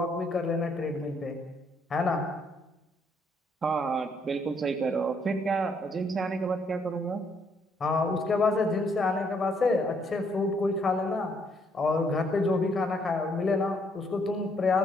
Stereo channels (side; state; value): both; normal; correlation 0.70